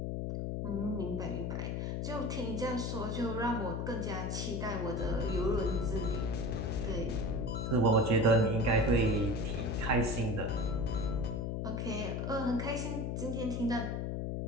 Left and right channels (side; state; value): left; noise; hum, 1 dB below the sound